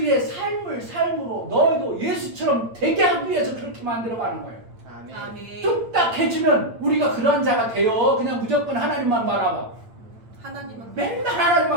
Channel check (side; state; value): left; late; 8.8 ms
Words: 삶으로 너희도 예수처럼 되게 하기 위해서 그렇게 만들어가는 거예요. 아멘. 아멘. 뚝딱 해주면 우리가 그러한 자가 돼요. 그냥 무조건 하나님만 바라봐. 하나님은 맨날